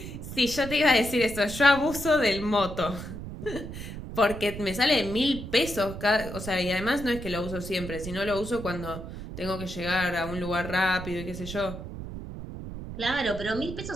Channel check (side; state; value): right; noise; rumble, 9 dB below the sound